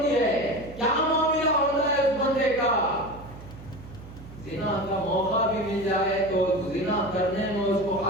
ہے کیا معاملہ ہوتا ہے اس بندے کا. زنا کا موقع بھی مل جائے تو زنا کرنے میں اس کو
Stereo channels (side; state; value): right; noise; hum, 16 dB below the sound